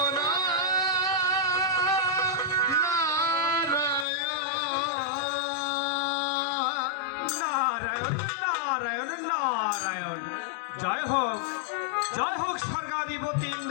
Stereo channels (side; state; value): right; drops out; at 4.0 s